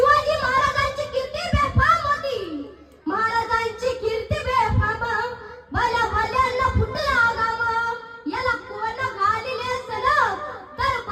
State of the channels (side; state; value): both; identical; correlation 1.00